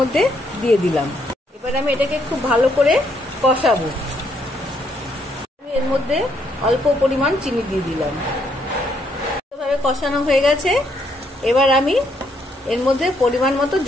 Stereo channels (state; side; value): normal; both; correlation 0.72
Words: দিয়ে দিলাম। এবার আমি এটাকে খুব ভালো করে কষাবো। আমি এর মধ্যে অল্প পরিমাণ চিনি দিয়ে দিলাম। ভালোভাবে কষানো হয়ে গেছে। এবার আমি এর মধ্যে পরিমাণ মতো